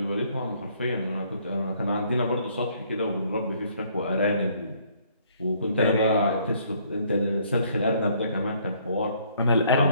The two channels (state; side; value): inverted; both; correlation -0.64